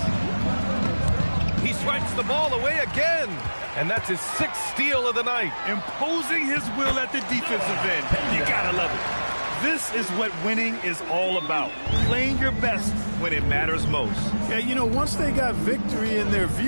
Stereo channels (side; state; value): both; inverted; correlation -1.00